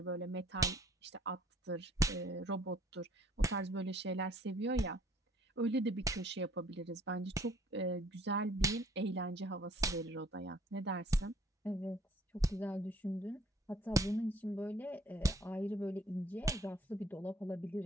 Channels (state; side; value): normal; both; correlation 0.58